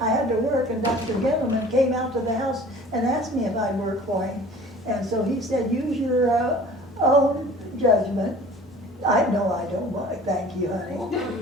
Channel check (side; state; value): both; normal; correlation 0.47